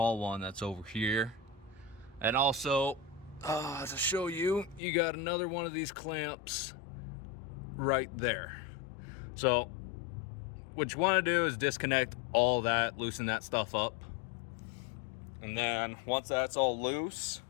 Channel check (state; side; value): drops out; right; at 4.8 s